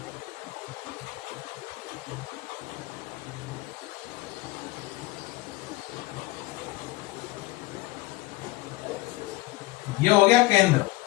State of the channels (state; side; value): quieter; right; 20.3 dB